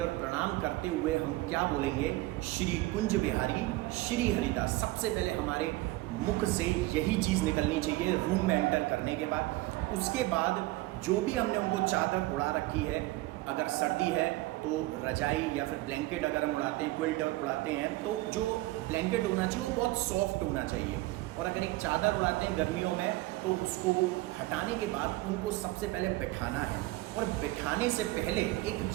और प्रणाम करते हुए हम क्या बोलेंगे, श्री कुंज बिहारी श्री हरिदास। सबसे पहले हमारे मुख से यही चीज़ निकलनी चाहिए रूम में एंटर करने के बाद। उसके बाद जो भी हमने उनको चादर उड़ा रखी है, अगर सर्दी है तो रजाई या फिर ब्लैंकेट अगर हम उड़ाते हैं, क्विल्ट उड़ाते हैं, तो जो ब्लैंकेट होना चाहिए वो बहुत सॉफ्ट होना चाहिए। और अगर एक चादर उड़ाते हैं गर्मियों में तो उसको हटाने के बाद उनको सबसे पहले बिठाना है। और बिठाने से पहले एक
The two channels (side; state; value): left; quieter; 19.2 dB